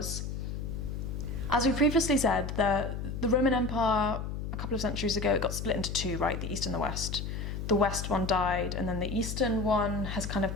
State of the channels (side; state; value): left; noise; hum, 5 dB below the sound